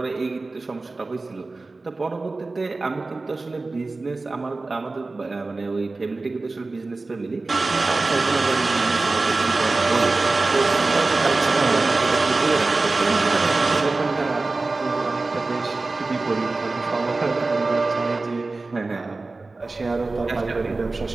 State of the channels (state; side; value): quieter; left; 3.5 dB